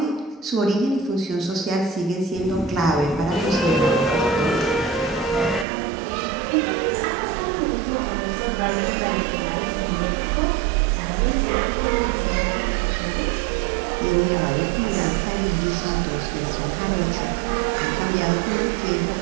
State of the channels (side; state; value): left; drops out; at 5.7 s